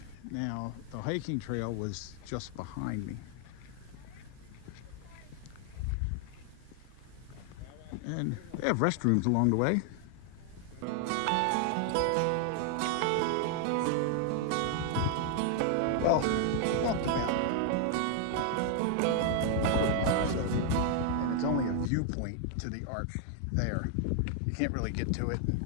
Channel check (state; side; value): different; both; correlation 0.00